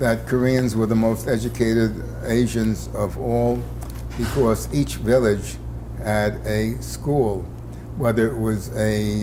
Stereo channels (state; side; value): identical; both; correlation 1.00